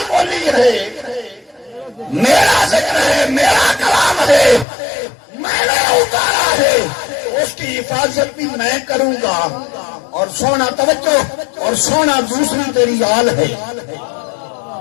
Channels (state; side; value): drops out; right; at 4.7 s